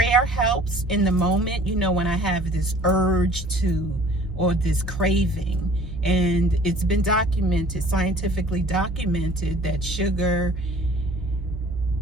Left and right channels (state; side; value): normal; both; correlation 0.50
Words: helps in the moment, when I have this urge or this craving. And it's been documented, scientifically documented, that sugar